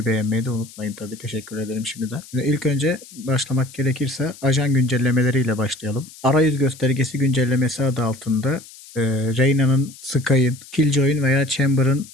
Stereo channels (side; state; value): left; noise; hiss, 19 dB below the sound